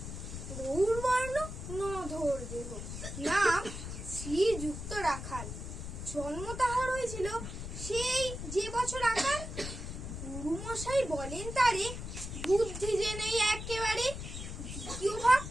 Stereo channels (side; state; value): left; noise; rumble, 8 dB below the sound